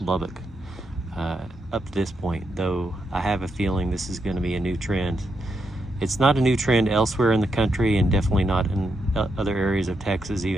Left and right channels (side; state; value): both; normal; correlation 0.82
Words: up to this point, though I have a feeling this is going to be a new trend. It's not a new trend elsewhere in the country, and definitely not in other areas of Texas,